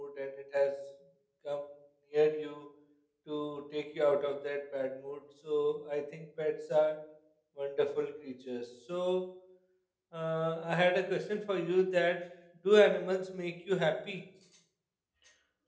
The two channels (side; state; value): both; identical; correlation 1.00